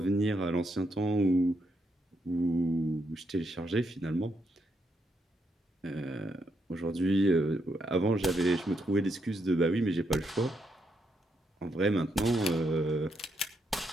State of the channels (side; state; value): both; normal; correlation 0.79